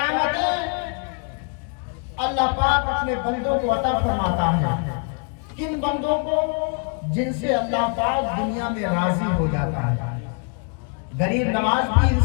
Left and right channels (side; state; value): right; quieter; 38.9 dB